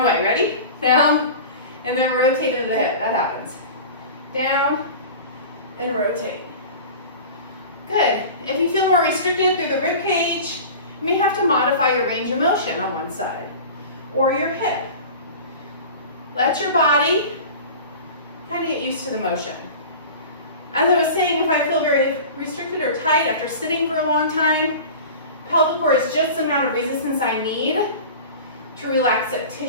way. Ready? Down, and then rotate into the hip. That happens. Down, and rotate. Good. If you feel more restricted through the rib cage, you may have to modify your range of motion on one side, or your hip. Let your body kind of get used to the motion. As I was saying, if I feel very restricted or tight after sitting for a long time, pelvic core is just the amount of resistance I need to relax that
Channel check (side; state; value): both; inverted; correlation -0.36